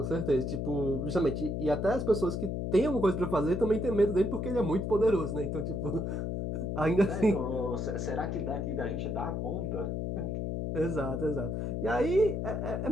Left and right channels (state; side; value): noise; left; hum, 2 dB below the sound